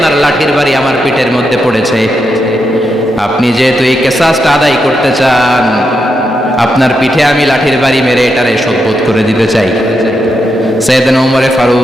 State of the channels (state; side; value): normal; both; correlation 0.83